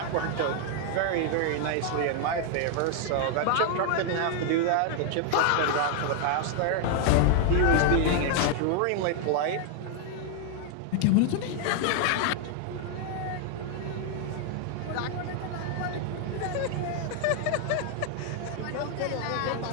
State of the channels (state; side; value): different; both; correlation 0.00